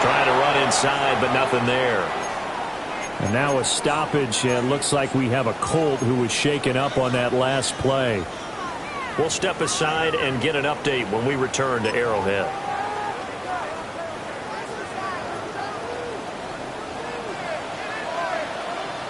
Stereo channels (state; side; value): identical; both; correlation 1.00